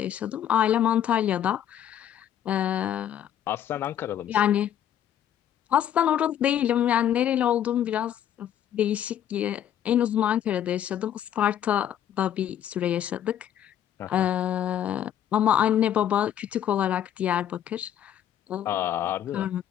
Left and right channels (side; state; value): right; quieter; 10.4 dB